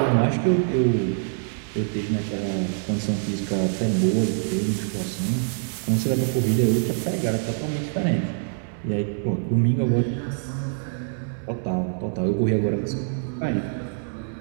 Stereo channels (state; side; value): silent; left; digital silence